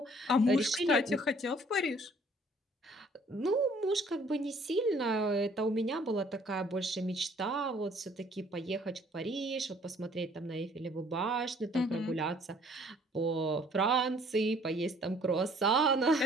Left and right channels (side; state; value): both; normal; correlation 0.58